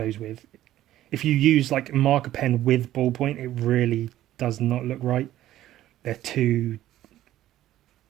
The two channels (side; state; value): left; quieter; 13.7 dB